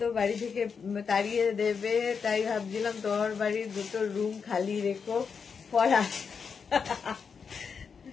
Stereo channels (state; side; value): quieter; right; 6.0 dB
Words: তো বাড়ি থেকে তাড়িয়ে দেবে, তাই ভাবছিলাম তোমার বাড়ির দুটো রুম খালি রেখো পড়া।